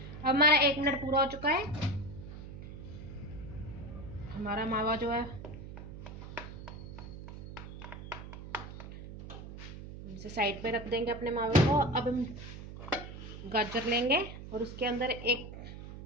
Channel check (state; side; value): noise; right; hum, 11 dB below the sound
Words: अब हमारा 1 मिनट पूरा हो चुका है। हमारा मावा जो है इसे साइड पे रख देंगे अपने मावे को। अब हम गाजर लेंगे और उसके अंदर 1